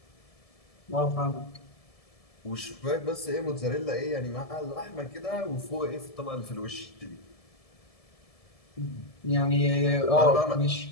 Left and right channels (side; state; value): right; late; 1.7 ms